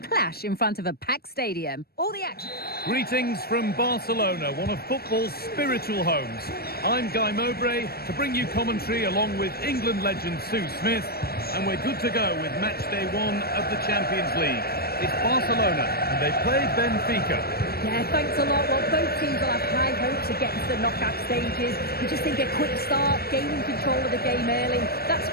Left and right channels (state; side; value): late; right; 0.45 ms